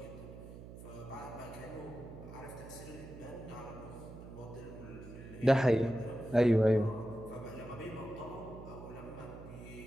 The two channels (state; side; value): noise; right; hum, 13 dB below the sound